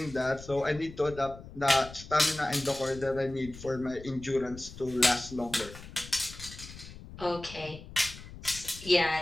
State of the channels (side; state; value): left; noise; rumble, 15 dB below the sound